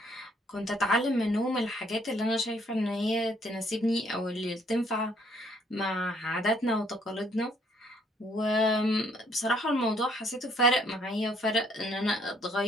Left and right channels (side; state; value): both; normal; correlation 0.65